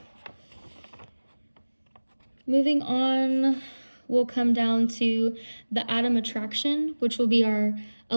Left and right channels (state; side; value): inverted; both; correlation -1.00